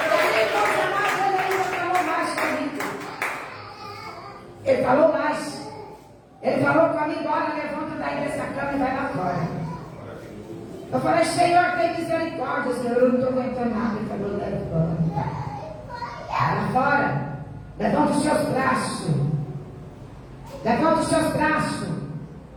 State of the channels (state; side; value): identical; both; correlation 1.00